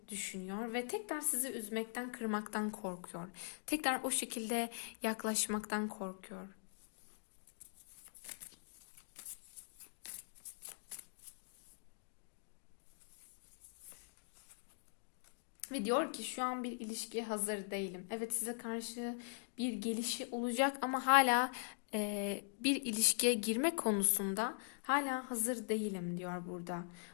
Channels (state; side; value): silent; right; digital silence